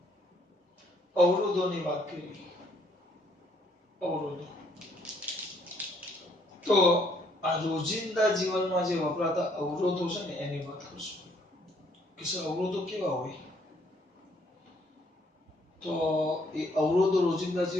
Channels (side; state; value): both; normal; correlation 0.67